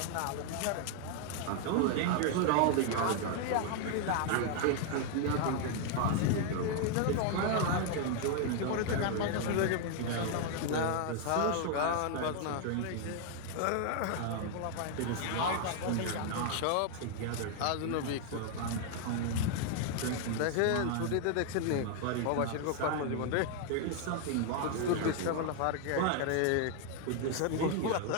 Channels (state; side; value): different; both; correlation 0.00